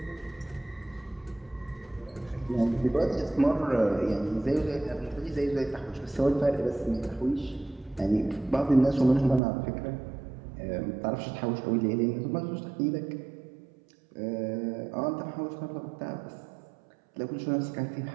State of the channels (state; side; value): drops out; left; at 9.4 s